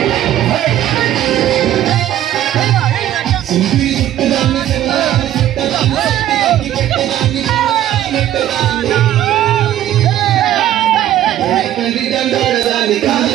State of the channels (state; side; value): quieter; left; 12.4 dB